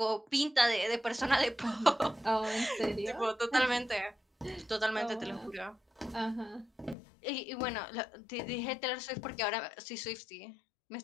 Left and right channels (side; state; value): right; drops out; at 7.0 s